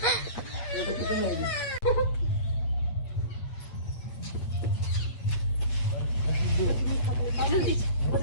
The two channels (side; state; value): right; late; 8.3 ms